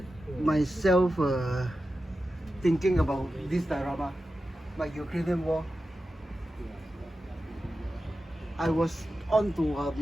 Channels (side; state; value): both; normal; correlation 0.92